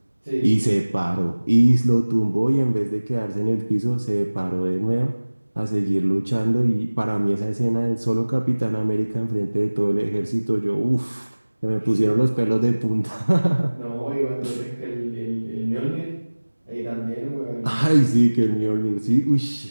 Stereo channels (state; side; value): inverted; both; correlation -1.00